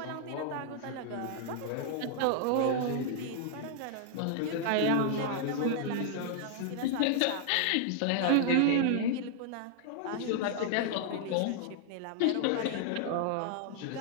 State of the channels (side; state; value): both; different; correlation 0.00